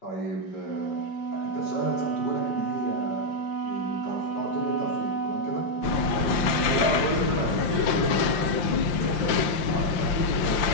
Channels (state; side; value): late; right; 5.7 ms